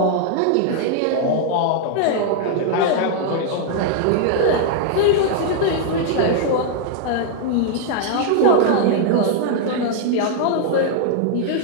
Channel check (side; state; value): both; different; correlation -0.01